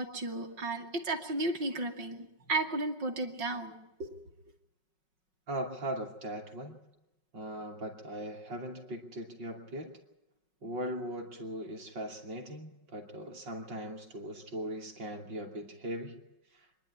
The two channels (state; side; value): late; left; 5.4 ms